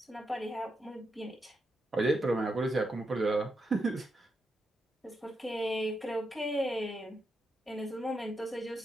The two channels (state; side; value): normal; both; correlation 0.84